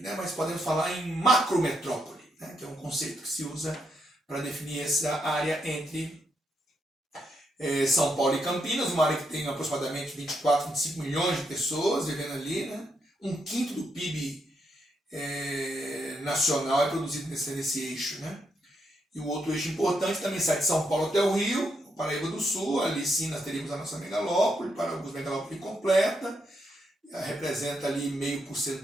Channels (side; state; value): both; normal; correlation 0.80